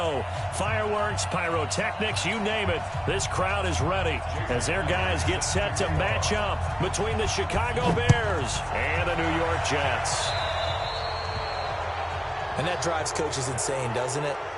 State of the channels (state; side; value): identical; both; correlation 1.00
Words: Fireworks, pyrotechnics, you name it. This crowd is ready as their guys get set to match up between the Chicago Bears and the New York Jets. And that drives coaches insane, doesn't it?